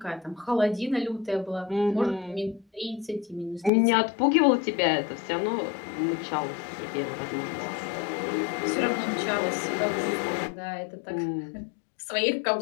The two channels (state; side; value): drops out; right; at 3.7 s